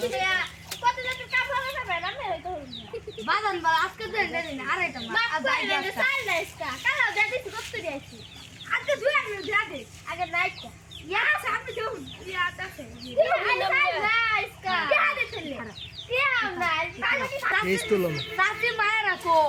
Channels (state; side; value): identical; both; correlation 1.00